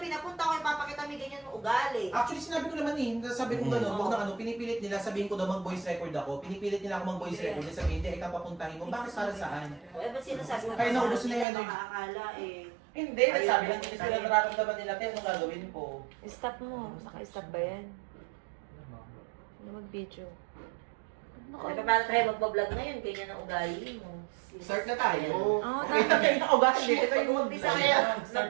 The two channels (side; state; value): left; drops out; at 11.5 s